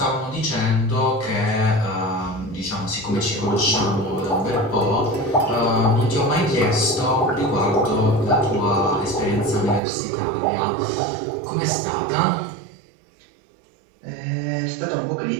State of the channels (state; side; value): drops out; left; at 9.8 s